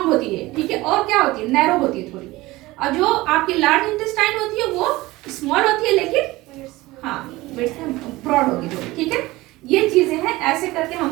होती है, ठीक है, और क्या होती है, नैरो होती है थोड़ी, और जो आपकी लार्ज इंटेस्टाइन होती है वो स्मॉल होती है लेकिन हाँ ब्रॉड होगी थोड़ी, ठीक है। ये चीजें हैं, ऐसे करके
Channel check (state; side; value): quieter; left; 19.5 dB